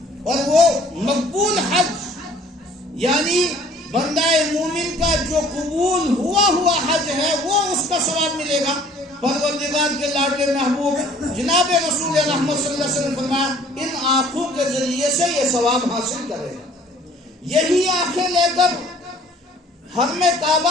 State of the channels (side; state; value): both; normal; correlation 0.55